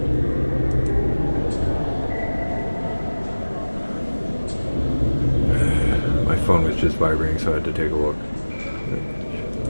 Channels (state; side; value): inverted; both; correlation -1.00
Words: My phone was just vibrating, so I had to take a look.